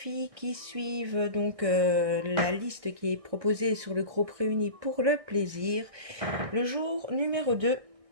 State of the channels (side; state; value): left; late; 1.6 ms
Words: qui suivent donc la liste qui est proposée sur le groupe Réunis pour le plaisir, le jour numéro 2,